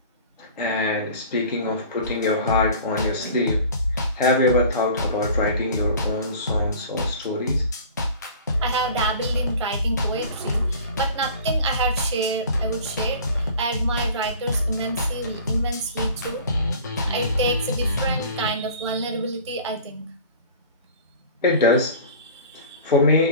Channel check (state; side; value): inverted; both; correlation -0.43